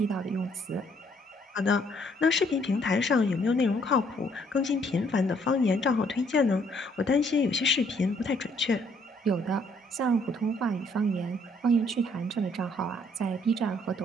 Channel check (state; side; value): normal; both; correlation 0.66